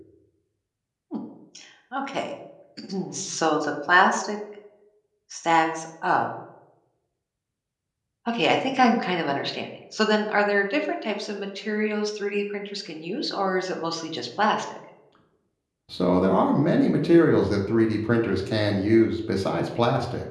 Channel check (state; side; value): identical; both; correlation 1.00